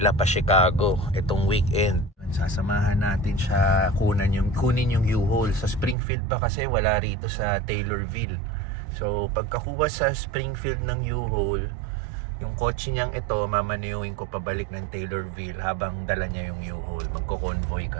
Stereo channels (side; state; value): left; drops out; at 6.0 s